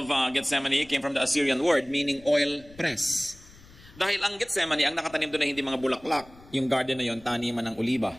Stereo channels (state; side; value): noise; left; rumble, 23 dB below the sound